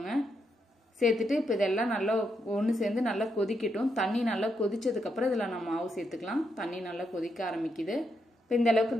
சேர்த்துட்டு இப்போ இதெல்லாம் நல்லா ஒன்று சேர்ந்து நல்லா கொதிக்கட்டும். தண்ணி நல்லா கொதிச்சதுக்கு அப்புறம் இதுல நம்ம மாவு சேர்த்துக்கலாம். தண்ணி நல்லா கொதிக்க ஆரம்பிக்குது. இப்போ இந்த அளவுக்கு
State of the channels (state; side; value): normal; both; correlation 0.80